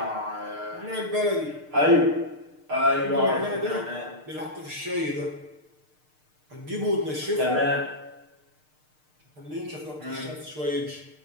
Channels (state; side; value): late; left; 6.6 ms